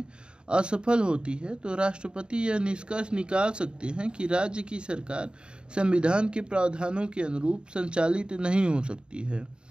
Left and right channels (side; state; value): left; late; 0.051 ms